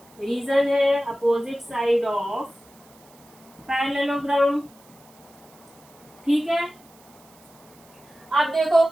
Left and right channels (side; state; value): right; noise; hiss, 27 dB below the sound